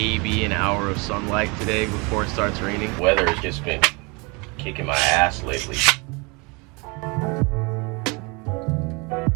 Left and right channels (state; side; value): quieter; left; 29.0 dB